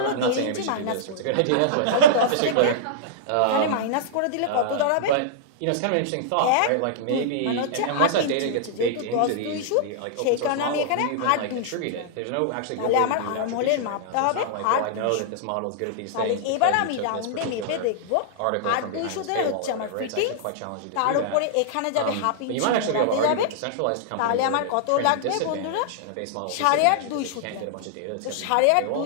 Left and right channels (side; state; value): both; different; correlation -0.02